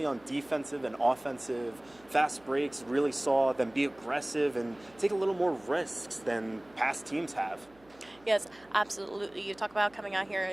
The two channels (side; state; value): right; noise; hum, 28 dB below the sound